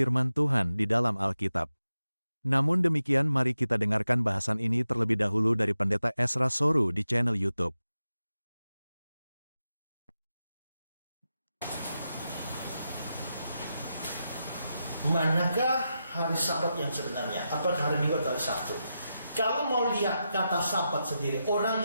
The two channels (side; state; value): both; inverted; correlation -0.89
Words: Tuhan di dalam Alkitab. Namun demikian mari kita dengarkan bahasan ini terlebih dahulu dari Pendeta Ezra Soru di channel YouTube. Manakah hari Sabat yang sebenarnya? Apakah hari Minggu atau hari Sabtu? Kalau mau lihat kata Sabat sendiri,